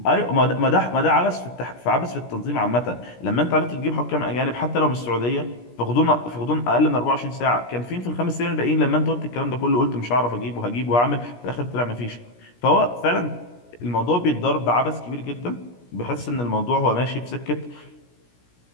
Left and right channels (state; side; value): late; right; 17 ms